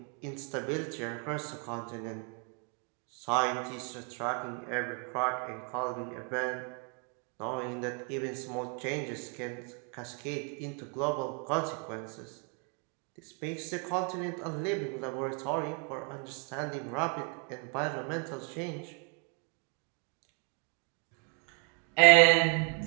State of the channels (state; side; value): quieter; left; 38.1 dB